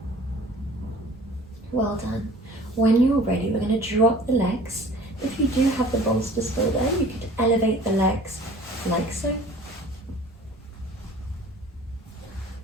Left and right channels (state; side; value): normal; both; correlation 0.47